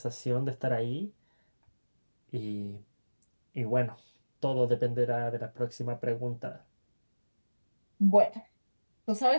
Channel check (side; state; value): both; inverted; correlation -1.00